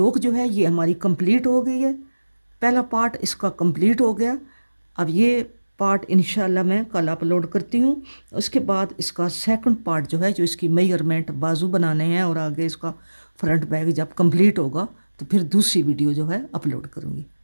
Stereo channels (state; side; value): inverted; both; correlation -1.00